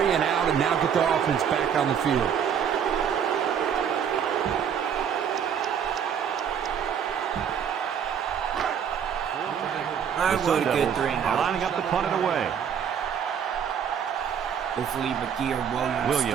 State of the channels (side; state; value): left; quieter; 8.0 dB